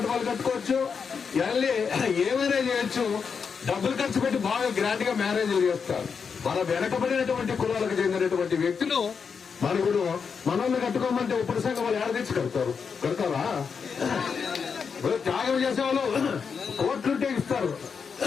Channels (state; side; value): quieter; right; 6.0 dB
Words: కట్టుకోవచ్చు, ఏమైనా చేయొచ్చు, డబ్బులు ఖర్చు పెట్టి బాగా గ్రాండ్ గా మ్యారేజ్లు చేస్తారు. మన వెనకబడినటువంటి కులాలకు చెందినటువంటి వ్యక్తులు మనకుడు మనల్ని కట్టుకోమంటే ఇప్పుడు సంఘం వాళ్ళు ఏడ తెచ్చి కడతారా? త్యాగం చేసేవాళ్ళు కోట్లుంటే ఇస్తారు.